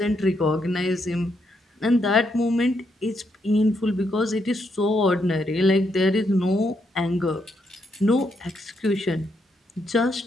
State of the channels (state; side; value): normal; both; correlation 0.78